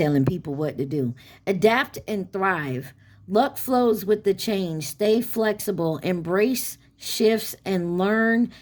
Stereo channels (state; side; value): identical; both; correlation 1.00